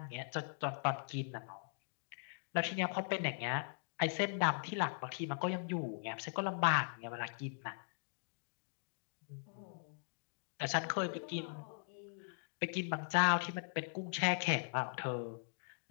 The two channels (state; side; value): silent; right; digital silence